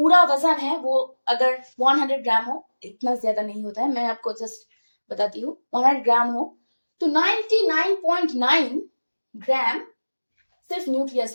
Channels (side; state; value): both; inverted; correlation -1.00